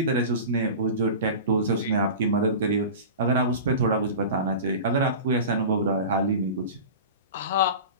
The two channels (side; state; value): both; inverted; correlation -0.33